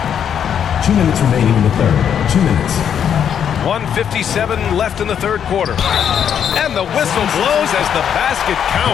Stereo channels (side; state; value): right; quieter; 8.5 dB